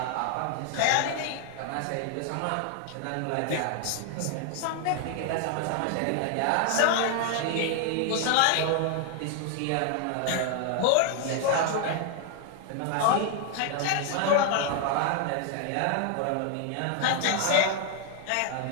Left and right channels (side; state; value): both; different; correlation 0.00